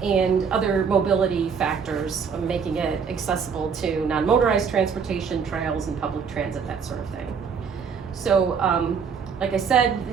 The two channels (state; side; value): quieter; left; 6.2 dB